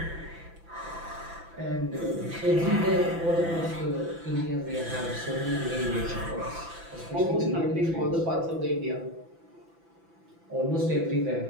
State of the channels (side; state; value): left; late; 6.0 ms